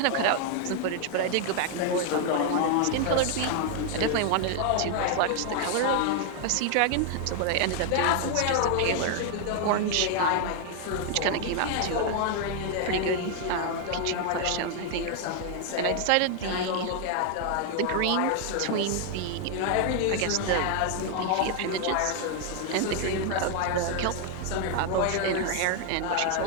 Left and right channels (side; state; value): both; different; correlation 0.00